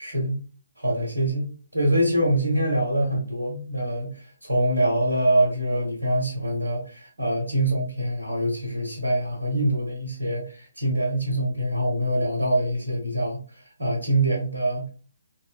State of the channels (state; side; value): inverted; both; correlation -0.78